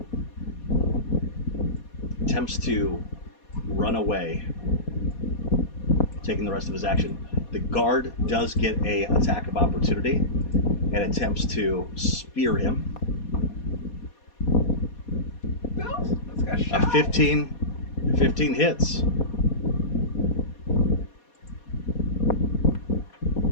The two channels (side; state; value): right; late; 4.2 ms